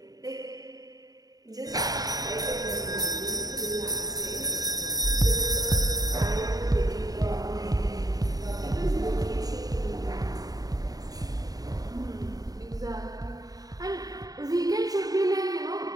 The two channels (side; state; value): left; late; 0.18 ms